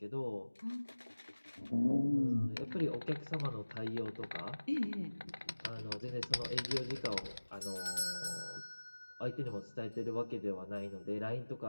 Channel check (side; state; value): both; inverted; correlation -1.00